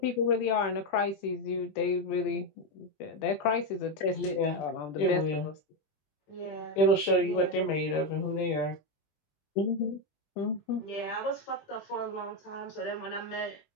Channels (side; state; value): right; late; 20 ms